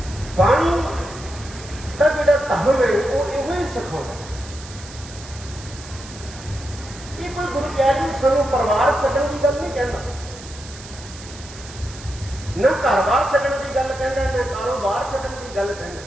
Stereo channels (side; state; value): right; noise; hiss, 16 dB below the sound